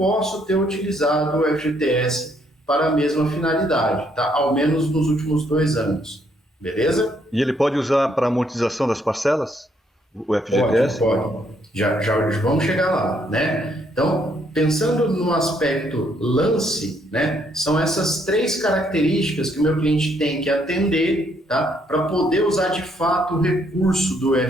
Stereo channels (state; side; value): normal; both; correlation 0.70